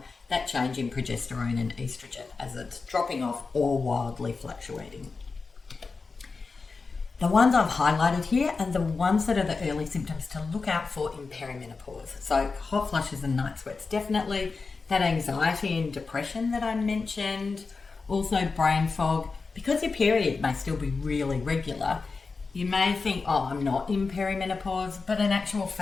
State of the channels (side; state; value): right; quieter; 4.4 dB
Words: that change in progesterone and estrogen as it's dropping off or wildly fluctuating. The ones I've highlighted here are the ones that are the early symptoms to look out for in perimenopause. So hot flushes and night sweats, definitely. That anxiety and depression that I mentioned. Also brain fog. Because your period may still be really regular, you may think, oh, I'm not in perimenopause, but in actual